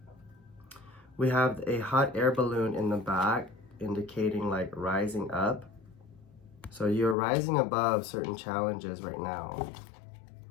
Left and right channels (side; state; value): right; drops out; at 7.2 s